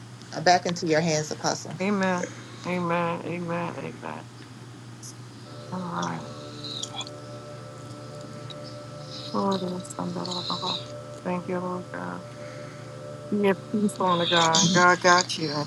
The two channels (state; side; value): identical; both; correlation 1.00